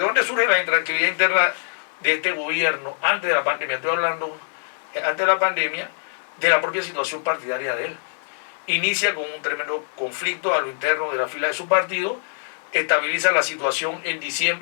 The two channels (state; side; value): silent; right; 56 dB below the other